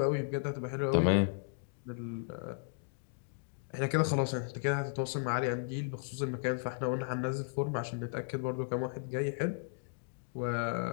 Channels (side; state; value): right; silent; digital silence